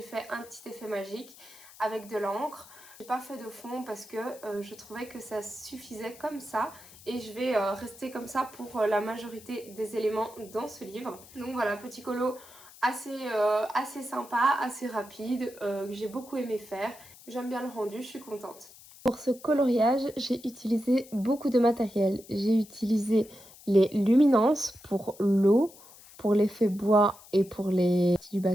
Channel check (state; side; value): noise; left; hiss, 21 dB below the sound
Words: fait un petit effet magique avec de l'encre. J'ai pas fait de fond parce que je trouvais que ça suffisait comme ça et je vais rester comme ça pour la majorité des éléments dans ce livre. Donc voilà, petit colo assez sympa, assez rapide, que j'ai beaucoup aimé faire. J'aime bien le rendu, je suis contente. Pour ce coloriage, j'ai utilisé beaucoup de matériel. J'ai utilisé les luminances pour l'eau, pour l'effet bois et pour les du